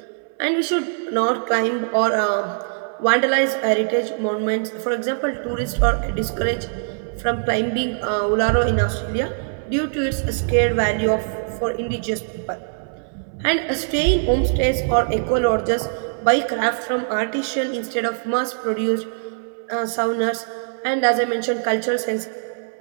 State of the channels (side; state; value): left; silent; 64 dB below the other